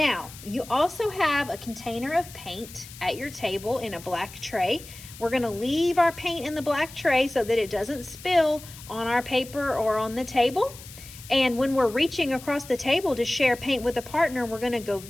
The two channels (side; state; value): left; noise; hiss, 17 dB below the sound